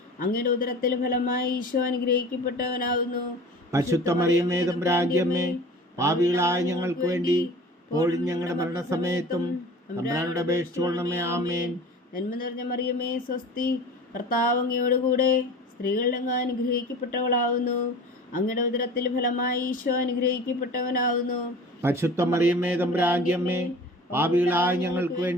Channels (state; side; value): normal; both; correlation 0.40